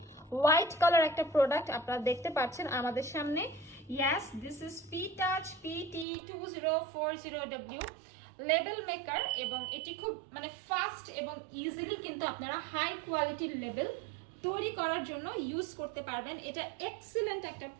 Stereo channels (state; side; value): drops out; left; at 6.1 s